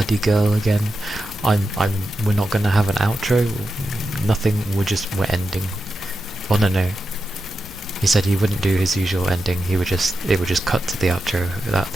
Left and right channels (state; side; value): noise; left; hum, 22 dB below the sound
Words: girl again, we're not gonna have an outro. Nothing. We're ending." Oh no. He said he wouldn't do his usual ending. It would just cut to the outro.